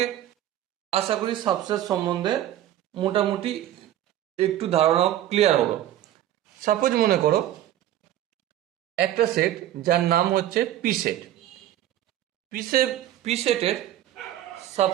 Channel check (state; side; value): quieter; left; 12.6 dB